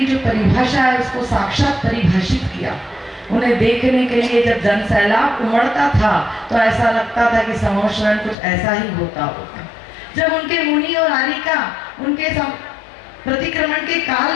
जो परिभाषा है उसको साक्षात परिभाषित किया। उन्हें देखने के लिए जब जन सैलाब उमड़ता था तो ऐसा लगता था कि समोशरण कुछ ऐसा ही होता होगा। जब उनके मुनि और आरिका उनके प्रतिक्रमण के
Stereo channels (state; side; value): drops out; right; at 8.3 s